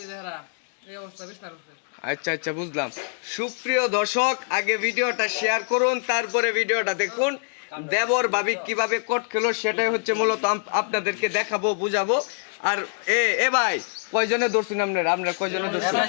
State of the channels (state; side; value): silent; right; digital silence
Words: দেহরা এই অবস্থা বিস্তার হচ্ছে। আচ্ছা আচ্ছা বুঝলাম। সুপ্রিয় দর্শক, আগে ভিডিওটা শেয়ার করুন, তারপরে ভিডিওটা দেখুন। দেবর ভাবি কিভাবে কোট খেলো সেটাই হচ্ছে মূলত আপনাদেরকে দেখাবো, বুঝাবো। আর এ ভাই কয়জনে ধরছেন আপনারা কয়জনে ধরছেন?